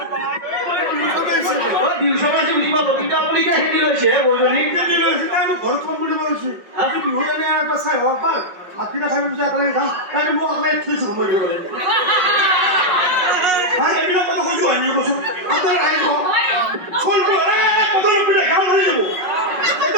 ঘৰত কম বুলি কৈছে আজি বিহু জানে এটা চাই হওক পাৰ হাতীটা খাই পিছে একেলগে যাম তাকে মোক আপোনাক থৈছো সময় দিব লাগিব এইবিলাক কথা কৈছো আনি কৈছো আপোনাৰ আহিব চলটো কথা নকৰিলে গাঁও ধৰি যাব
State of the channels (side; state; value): left; late; 5.5 ms